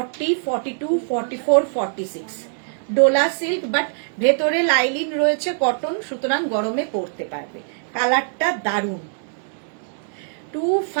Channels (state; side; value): silent; left; digital silence